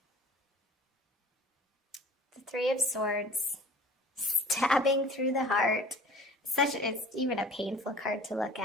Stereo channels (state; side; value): normal; both; correlation 0.46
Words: Three of Swords stabbing through the heart, it's even a painful card to look